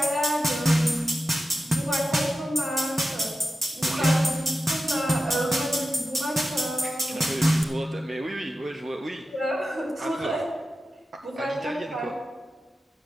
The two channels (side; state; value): both; normal; correlation 0.92